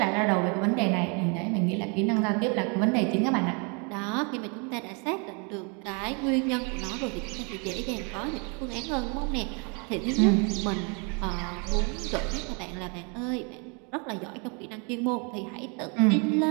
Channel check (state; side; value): quieter; left; 34.4 dB